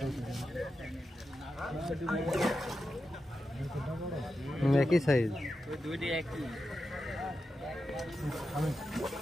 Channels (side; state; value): both; normal; correlation 0.89